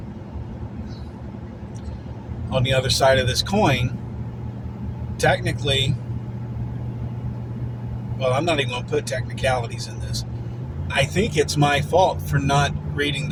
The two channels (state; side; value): identical; both; correlation 1.00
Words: on the other side of this coin, technically, well, I'm not even going to put technicalities in this. I think it's my fault for not reading